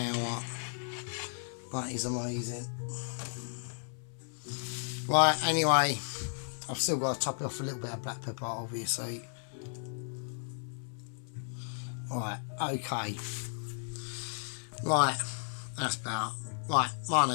That is amazing. Right, anyway, I've still got to top it off a little bit of black pepper, obviously. Right, okay. Right, that's about. Right, my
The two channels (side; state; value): right; silent; 55 dB below the other